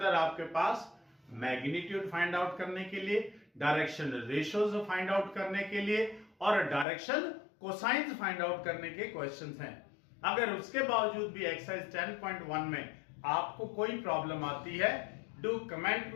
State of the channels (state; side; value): drops out; right; at 6.9 s